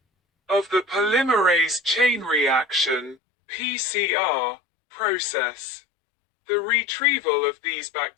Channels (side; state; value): right; drops out; at 3.2 s